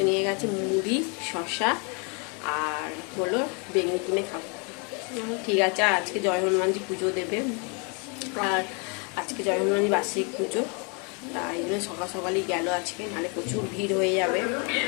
নিয়ে গেছে মুড়ি, শসা আর হলো বেগুনি কিনে খাবো। ঠিক আছে। আর আজকে জয় হনুমানজি পুজো দেবে, আর আজকে জয় হনুমানজি বার্ষিক পুজো। তাই জন্য সকাল সকালই গেল আজকে, নাহলে প্রচুর ভিড় হয়ে যাবে।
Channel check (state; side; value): quieter; right; 34.6 dB